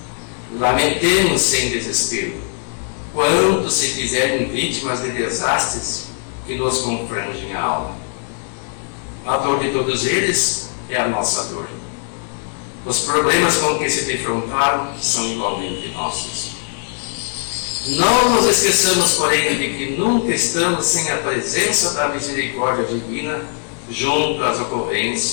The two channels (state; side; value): silent; right; 58 dB below the other